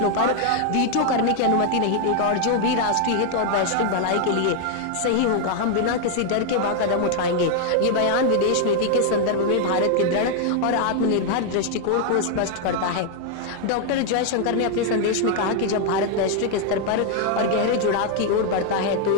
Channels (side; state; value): both; different; correlation 0.00